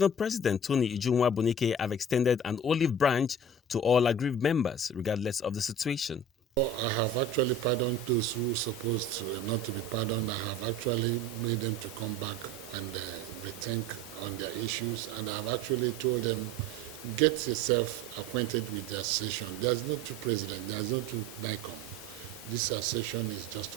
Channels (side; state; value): both; normal; correlation 0.39